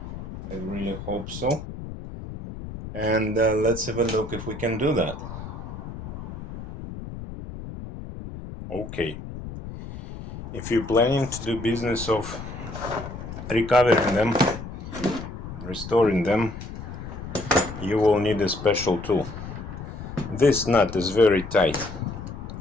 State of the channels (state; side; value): noise; left; rumble, 10 dB below the sound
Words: I really hope so. And let's have a look if we can do that. Okay, if you're planning to do business of recovering them, restoring them, you will need a special tool. This nut is very tight,